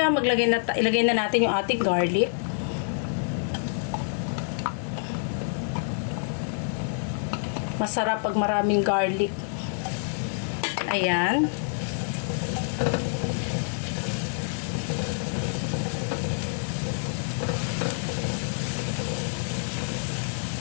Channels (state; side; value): silent; right; digital silence